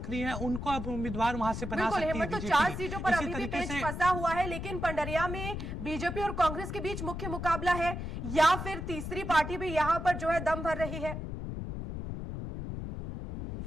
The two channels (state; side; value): noise; left; rumble, 6 dB below the sound